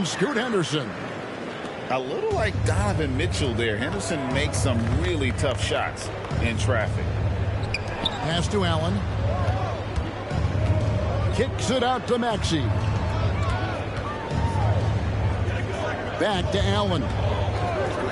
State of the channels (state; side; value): identical; both; correlation 1.00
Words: Scoot Henderson. A little like Donovan Mitchell there. Henderson makes some really tough shots in traffic. Pass to Allen. Kicks it out to Maxey. Back to Allen.